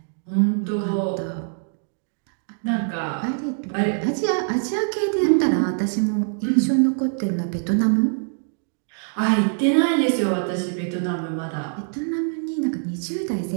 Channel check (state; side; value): silent; left; digital silence